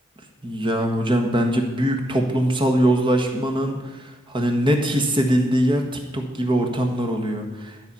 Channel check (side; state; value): both; normal; correlation 0.79